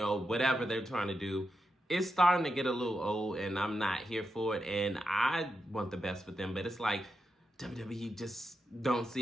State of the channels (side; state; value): both; normal; correlation 0.86